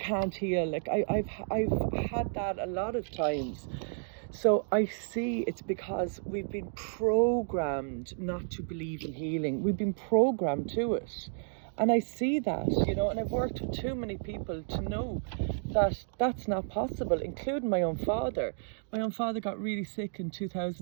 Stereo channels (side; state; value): left; silent; digital silence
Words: heal. Like I've had that a lot of times. So I see it's because we've been programmed not to believe in healing. We've been programmed to it. And I see that, and I've worked with too many people to know that that's not possible, including my own father. My own father got really sick in